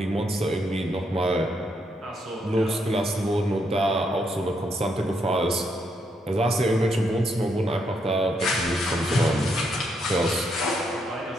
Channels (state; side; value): normal; both; correlation 0.77